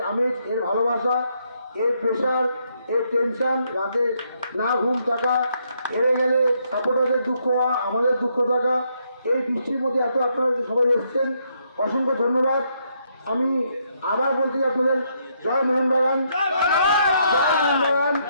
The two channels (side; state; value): both; inverted; correlation -0.75